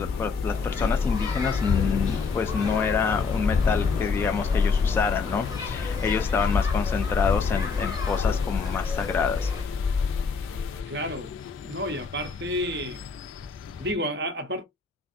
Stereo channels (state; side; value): quieter; right; 4.9 dB